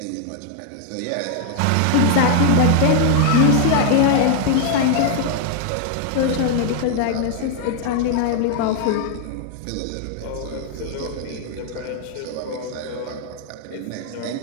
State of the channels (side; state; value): both; different; correlation 0.00